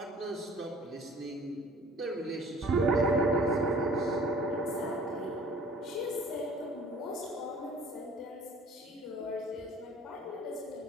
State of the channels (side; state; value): both; normal; correlation 0.50